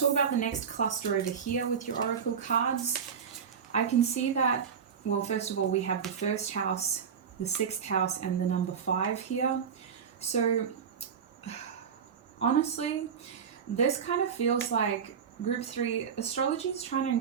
about the next cluster over here with your oracle cards. I can see that, well, first of all, we have the 1st house, the 6th house, and the number 5 here. So honestly, this kind of feels like group 3, astrology is trying to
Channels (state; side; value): quieter; left; 7.1 dB